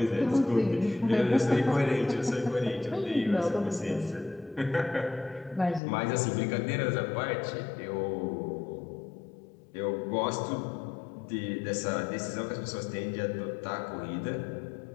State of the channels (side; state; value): right; drops out; at 5.8 s